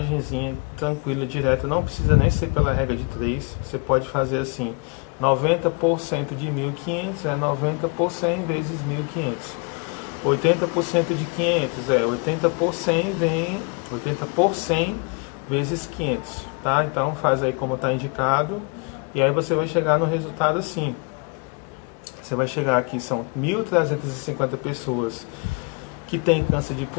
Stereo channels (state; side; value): quieter; right; 33.7 dB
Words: tranquila, direta, não precisa nem ser pela regra de 3, você pode fazer assim, 90% de 1.500 é 90 por 100 vezes 1.500. 80% de 500 80 por 100 vem 80 por 100 vezes 500, tá? Então faz aí como está indicado, e aí você vai chegar no resultado assim. Você vai chegar aqui, são 1.350 pessoas que têm câncer de